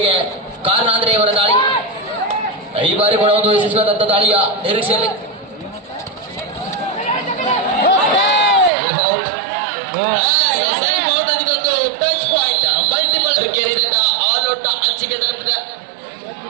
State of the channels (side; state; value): left; drops out; at 8.7 s